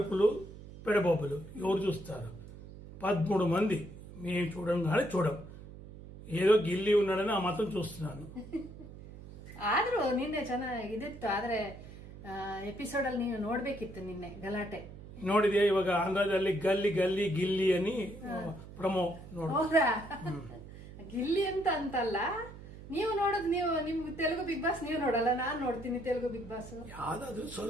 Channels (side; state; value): right; noise; hum, 15 dB below the sound